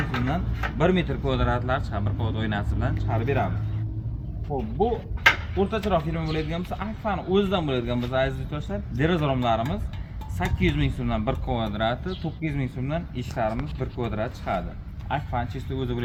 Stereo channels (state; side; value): identical; both; correlation 1.00